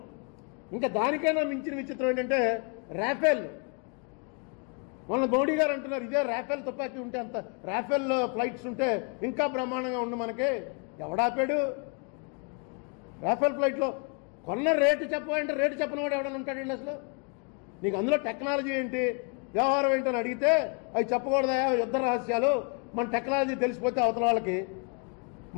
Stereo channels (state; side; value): quieter; right; 35.8 dB